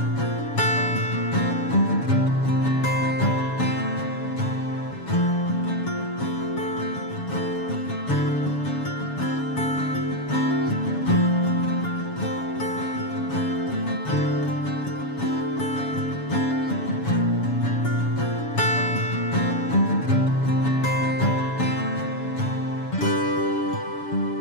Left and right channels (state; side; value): late; right; 7.1 ms